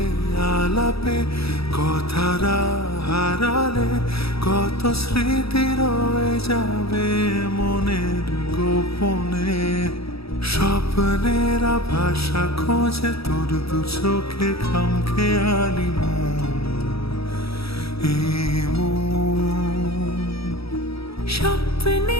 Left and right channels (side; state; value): right; late; 0.77 ms